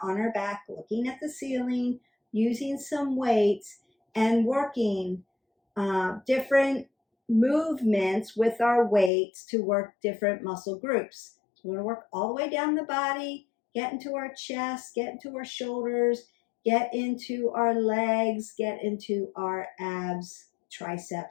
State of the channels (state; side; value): drops out; right; at 9.1 s